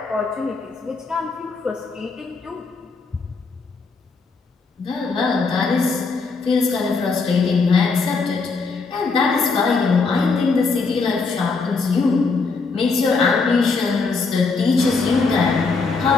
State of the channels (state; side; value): quieter; right; 4.4 dB